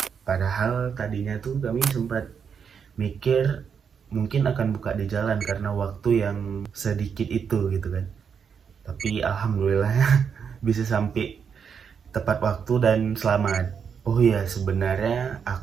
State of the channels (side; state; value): left; quieter; 6.8 dB